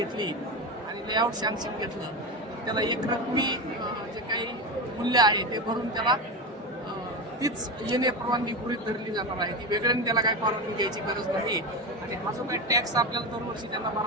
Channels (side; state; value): both; normal; correlation 0.19